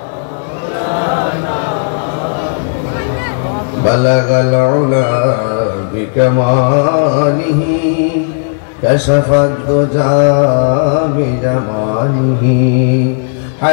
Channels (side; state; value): right; silent; digital silence